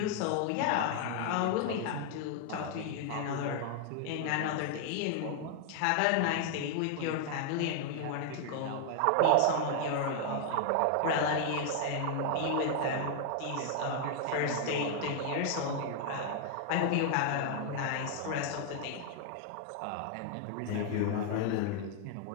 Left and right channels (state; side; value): different; both; correlation 0.00